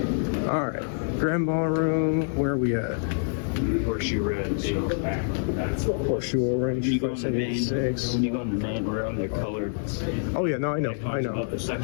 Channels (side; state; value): right; silent; digital silence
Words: All right, Grand Ballroom. Where are we at? Horseshoe Red. Horseshoe Orange. When you go in the main room, they're colored. Oh yeah, no, I know. About the